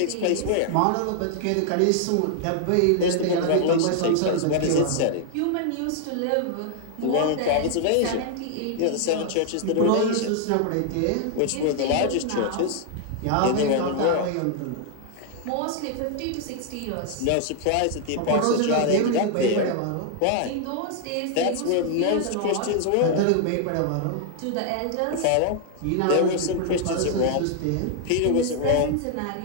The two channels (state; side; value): different; both; correlation 0.00